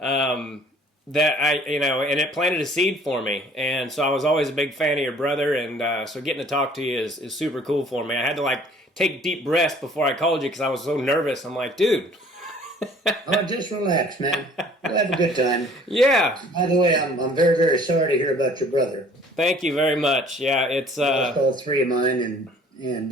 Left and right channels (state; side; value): normal; both; correlation 0.54